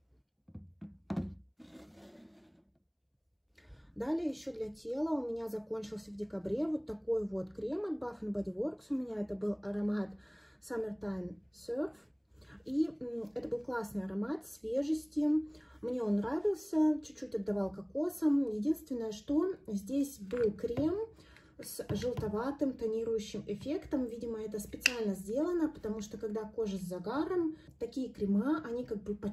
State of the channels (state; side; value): identical; both; correlation 1.00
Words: Далее еще для тела у меня закончился в декабре вот такой вот крем от Bath Body Works. У меня это был аромат Summertime Surf. И это был классный аромат свежести. Мне он нравился, чуть-чуть отдавал кокосом. Единственное, что здесь был крем с желтоватым тонирующим эффектом. Видимо, это специально сделано, потому что когда кожа с загаром, такие крема, они как бы